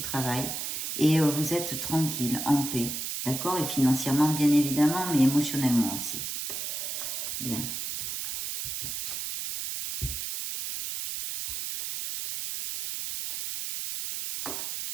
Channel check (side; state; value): right; noise; hiss, 4 dB below the sound